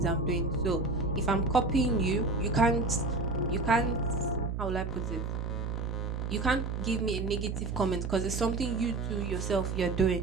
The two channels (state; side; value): noise; right; hum, 3 dB below the sound